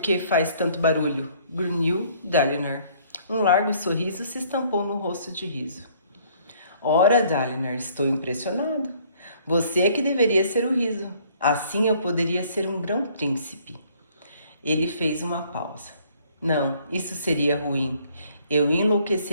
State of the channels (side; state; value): both; inverted; correlation -0.61